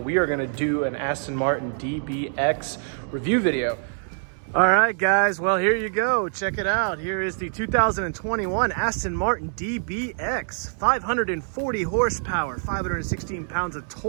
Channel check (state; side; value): silent; left; digital silence